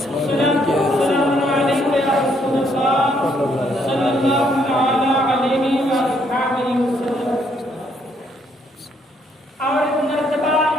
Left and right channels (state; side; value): normal; both; correlation 0.71